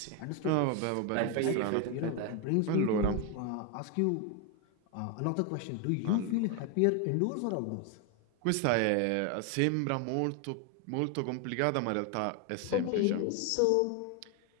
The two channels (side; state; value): both; different; correlation 0.01